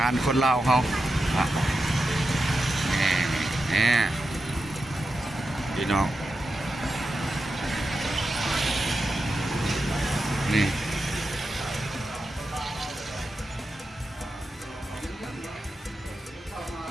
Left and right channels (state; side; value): normal; both; correlation 0.89